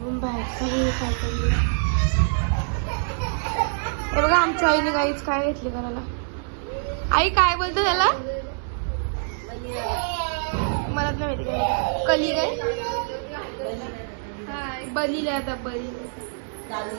बाहेरचा व्ह्यू काय करू. हे बघा आमच्या आईने काहीच काय घेतली करायला. आई काय बोलतो त्याला मला नाही माहिती काय. कली काय बलीला आता बली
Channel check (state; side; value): silent; left; digital silence